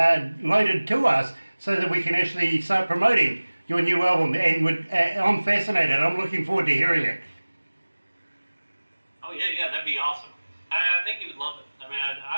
loaded to us so that we can actually start promoting your new album. And I'm fascinated. I'm looking forward to hearing it. Oh, yeah, that'd be awesome. I think you would love it. I mean,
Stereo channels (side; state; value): both; inverted; correlation -1.00